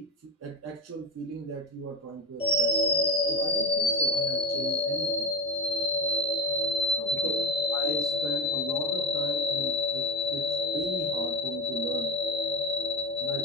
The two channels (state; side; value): normal; both; correlation 0.19